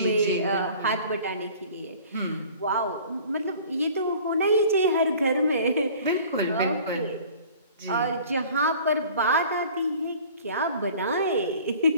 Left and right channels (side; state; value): both; inverted; correlation -0.47